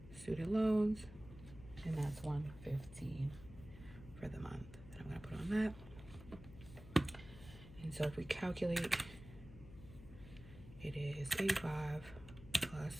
student loans, and that's 115 for the month that I'm gonna put on that. And so if we calculate, it is 85 plus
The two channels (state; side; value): noise; left; hum, 16 dB below the sound